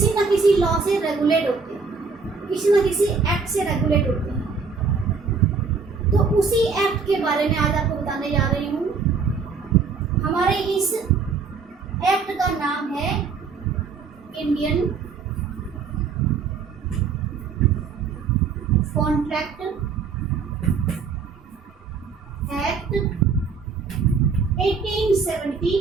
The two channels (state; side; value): quieter; left; 5.1 dB